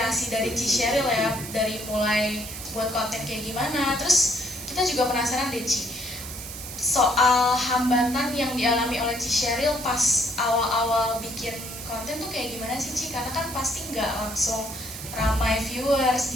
dari Ci Sheryl ya, dari mulai buat konten kayak gimana. Terus kita juga penasaran deh Ci, soal hambatan yang dialami oleh Ci Sheryl pas awal-awal bikin konten tuh kayak gimana sih Ci? Karena kan pasti nggak langsung ramai viewers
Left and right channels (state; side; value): noise; right; hiss, 10 dB below the sound